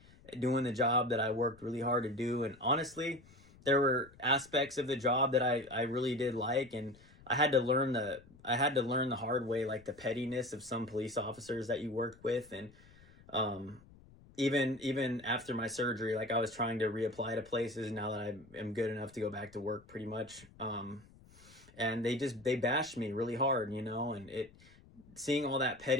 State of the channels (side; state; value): left; noise; rumble, 24 dB below the sound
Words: doing the job that I worked really hard to do. And honestly, there were aspects of the job that I really did like, and I had to learn the hard way, like the pettiness of some police officers that you work with. And even after my surgery, like I was trying to reapply to places now that I am good enough to go back to work pretty much. And they bashed me really hard, you know, and seeing all that